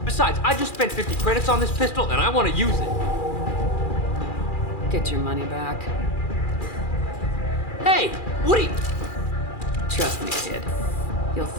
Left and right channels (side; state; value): right; late; 2.4 ms